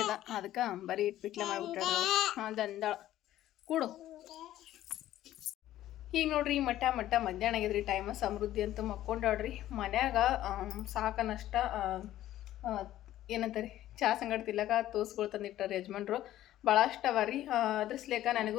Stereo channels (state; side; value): quieter; right; 13.5 dB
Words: ಅದ, ಅದಕ್ಕೆ ಬರೀ ಪಿಟ್ಲೆ ಮಾಡಿಬಿಟ್ಟಾಡ್ರಿ. ದಂದಾಳ ಕೂಡು. ಈಗ ನೋಡ್ರಿ ಮಟ್ಟ ಮಧ್ಯಾಹ್ನ ಆಗಿದ್ರಿ. ಟೈಮ ಸಮೃದ್ಧಿ ಅಂತ ಮಕ್ಕೊಂಡಾಡ್ರಿ. ಮನ್ಯಾಗ ಸಾಕನಷ್ಟ ಏನಂತಾರೆ ಚಹಾ ಸಂಗಡ ತಿಲ್ಲಕ ತೋಸ್ಗಳು ತಂದಿಟ್ಟಾರೆ ಯಜಮಾನ್ರು. ಭಾಳಷ್ಟು ಅವ ರೀ. ಅದ್ರ ಸಲೇಕ